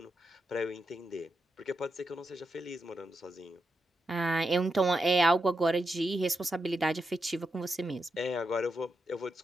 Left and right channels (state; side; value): normal; both; correlation 0.85